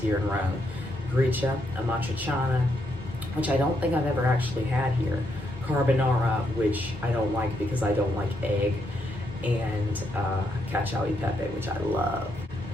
in Rome. Gricia, amatriciana, which I don't think I've ever actually had here. Carbonara, which I don't like because I don't like egg. And cacio e pepe, which I love.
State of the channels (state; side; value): normal; both; correlation 0.78